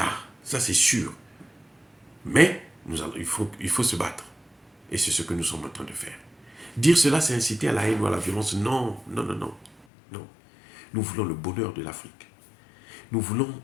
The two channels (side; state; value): right; drops out; at 9.9 s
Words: Ça c'est sûr. Mais il faut se battre. Et c'est ce que nous sommes en train de faire. Dire cela, c'est inciter à la haine ou à la violence. Non, non, non, non. Non. Nous voulons le bonheur de l'Afrique. Nous voulons